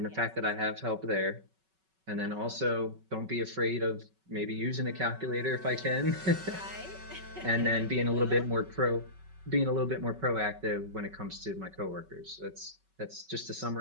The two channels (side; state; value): left; late; 5.3 ms